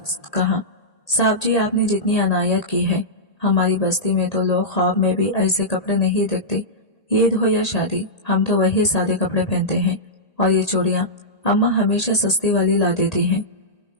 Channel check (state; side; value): late; right; 1.8 ms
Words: कहा, साहब जी, आपने जितनी अनायत की है, हमारी बस्ती में तो लोग ख्वाब में भी ऐसे कपड़े नहीं देखते। ईद हो या शादी, हम तो वही सादे कपड़े पहनते हैं और ये चूड़ियां अम्मा हमेशा सस्ती वाली ला देती हैं।